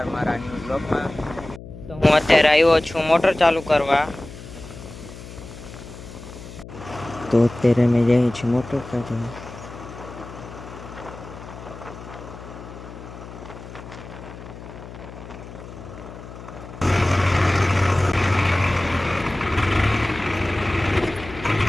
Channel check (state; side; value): noise; left; hum, 14 dB below the sound